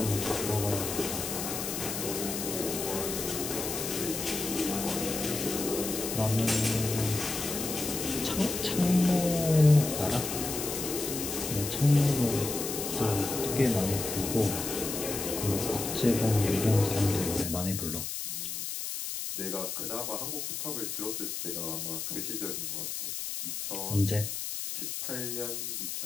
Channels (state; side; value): noise; left; hiss, 4 dB below the sound